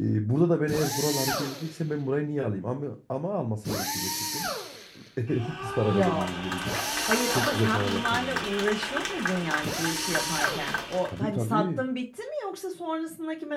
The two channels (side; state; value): both; identical; correlation 1.00